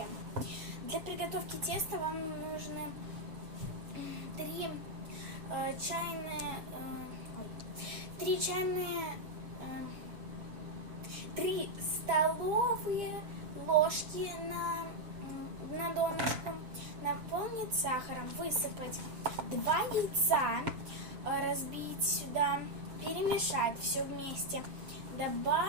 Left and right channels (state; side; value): late; left; 6.9 ms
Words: Для приготовки теста вам нужны 3 столовые ложки на донышку, наполнить сахаром, высыпать 2 яйца, разбить сюда, перемешать все вместе,